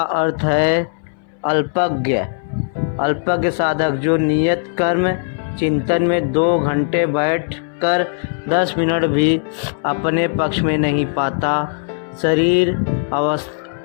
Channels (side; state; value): right; silent; 64 dB below the other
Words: है अल्पज्ञ। अल्पज्ञ साधक जो नियत कर्म चिंतन में 2 घंटे बैठकर 10 मिनट भी अपने पक्ष में नहीं पाता। शरीर